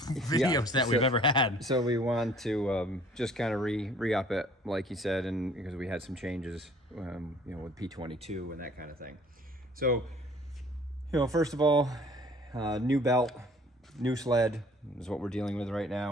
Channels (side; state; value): both; normal; correlation 0.55